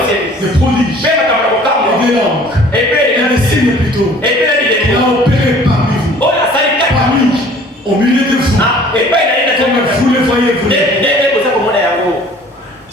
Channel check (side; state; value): both; normal; correlation 0.51